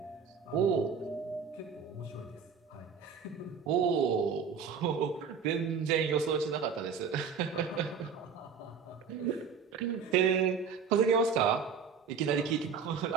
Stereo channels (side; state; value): left; quieter; 6.1 dB